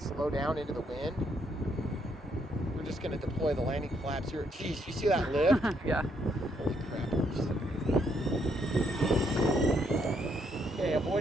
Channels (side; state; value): both; normal; correlation 0.73